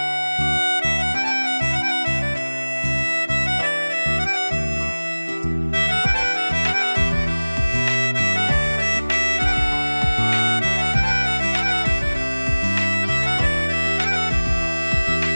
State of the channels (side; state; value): both; inverted; correlation -1.00